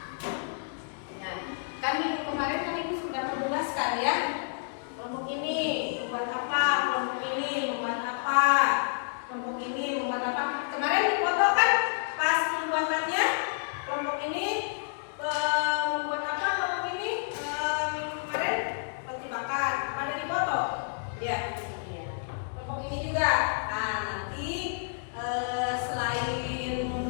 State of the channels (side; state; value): right; silent; digital silence